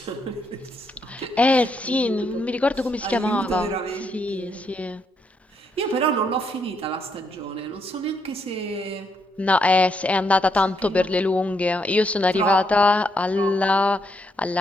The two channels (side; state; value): both; normal; correlation 0.76